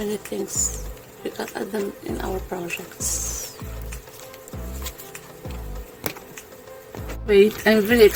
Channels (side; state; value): both; identical; correlation 1.00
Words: things. We can add them in our projects. Wait, I'm very